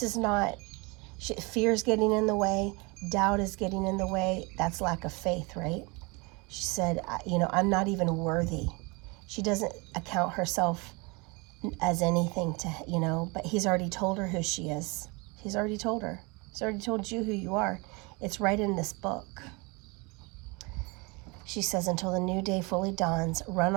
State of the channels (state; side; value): quieter; left; 28.1 dB